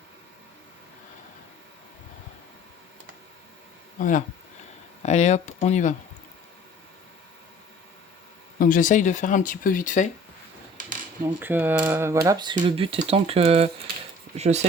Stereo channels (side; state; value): both; normal; correlation 0.50